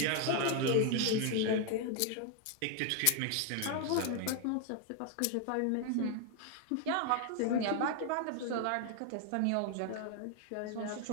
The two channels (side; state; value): both; different; correlation 0.00